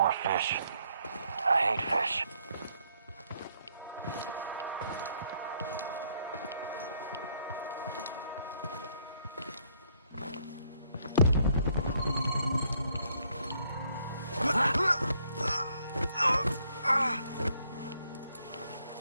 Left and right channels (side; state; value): both; inverted; correlation -0.69